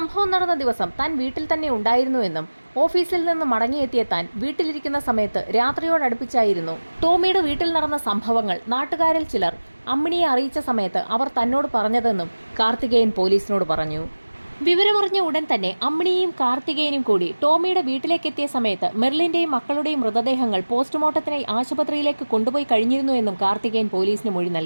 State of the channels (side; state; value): both; inverted; correlation -1.00